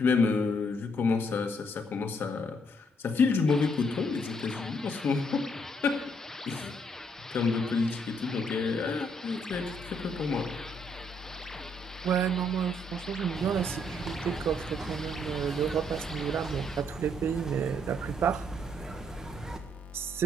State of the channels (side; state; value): both; normal; correlation 0.71